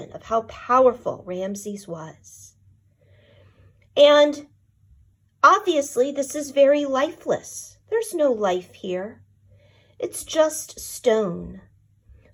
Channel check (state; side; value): identical; both; correlation 1.00